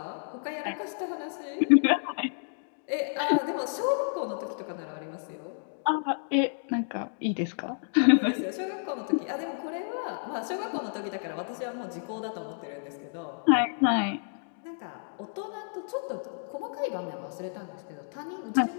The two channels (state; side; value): silent; right; digital silence